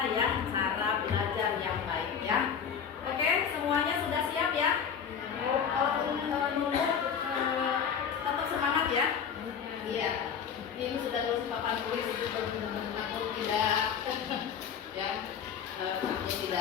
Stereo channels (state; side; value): quieter; right; 7.4 dB